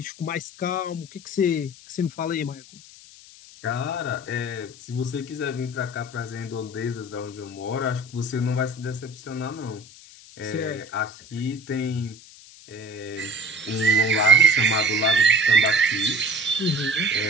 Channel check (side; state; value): left; noise; hiss, 20 dB below the sound